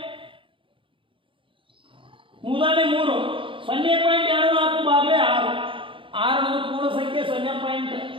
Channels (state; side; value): late; left; 0.25 ms